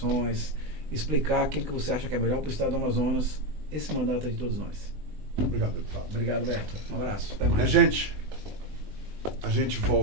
explicar aquilo que você acha que é melhor para o estado do Amazonas. Esse mandato é de todos nós. Obrigado, deputado. Obrigado, Beto. Um abraço. Até mais. Minha gente, a gente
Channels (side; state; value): left; late; 20 ms